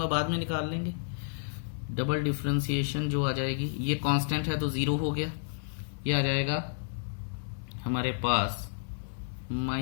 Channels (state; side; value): silent; right; 57 dB below the other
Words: बाद में निकाल लेंगे। डबल डिफरेंशिएशन जो आ जाएगी, ये कांस्टेंट है तो 0 हो गया, ये आ जाएगा हमारे पास